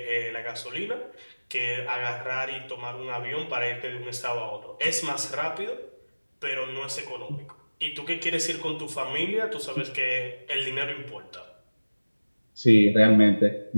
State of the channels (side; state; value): both; inverted; correlation -1.00